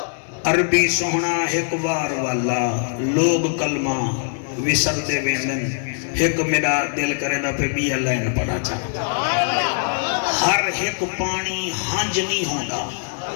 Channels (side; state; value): right; silent; digital silence